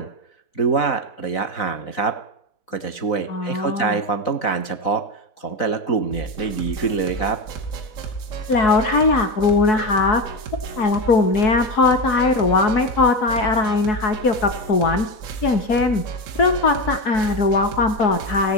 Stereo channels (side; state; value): right; late; 4.1 ms